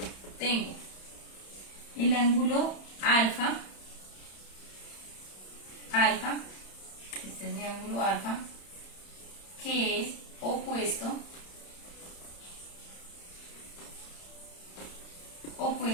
Tengo el ángulo alfa, este es mi ángulo alfa, que es opuesto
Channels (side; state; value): right; late; 31 ms